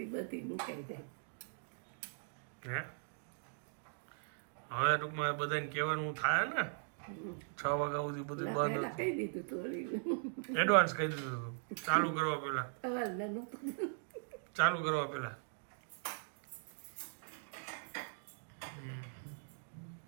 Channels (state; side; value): silent; left; digital silence